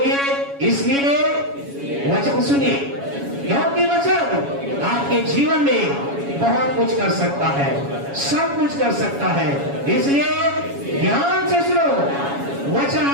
इसलिए वचन सुनिए, क्योंकि वचन आपके जीवन में बहुत कुछ कर सकता है, सब कुछ कर सकता है। इसलिए ध्यान से सुनो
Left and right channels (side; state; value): left; late; 7.2 ms